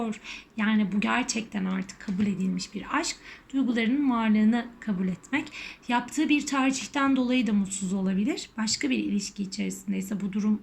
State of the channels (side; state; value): both; identical; correlation 1.00